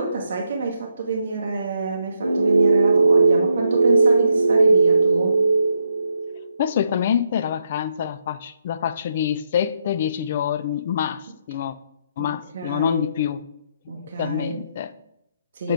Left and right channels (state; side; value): inverted; both; correlation -0.78